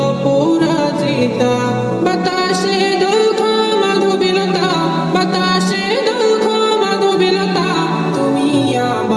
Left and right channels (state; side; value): identical; both; correlation 1.00